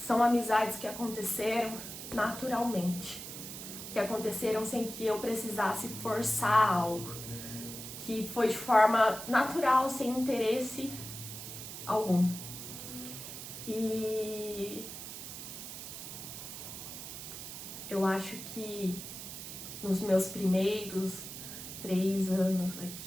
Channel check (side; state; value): right; noise; hiss, 9 dB below the sound